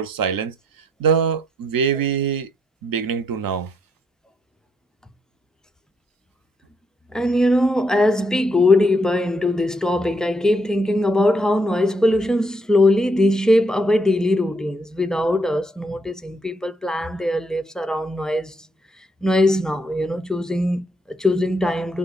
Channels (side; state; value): both; normal; correlation 0.75